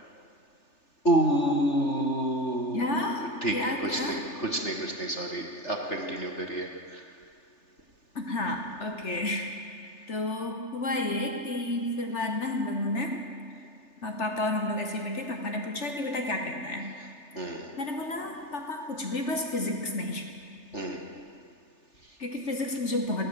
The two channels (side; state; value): right; late; 3.3 ms